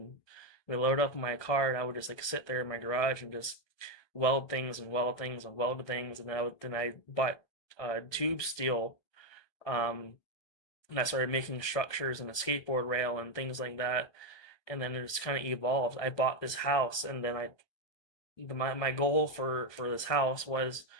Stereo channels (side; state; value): right; late; 1.2 ms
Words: we loaded up my car, and I would just like sit there in my garage and just weld things and weld things and weld things. And then I bought tube steel, and I started making structures and a skateboard rail and things like that. And then it just kind of evolved. I bought this house, and then my goal for this house was